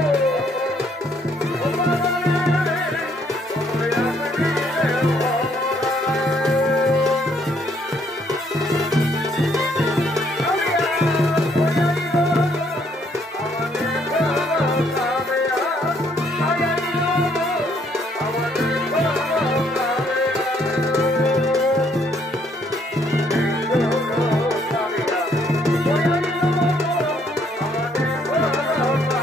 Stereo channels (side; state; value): both; normal; correlation 0.68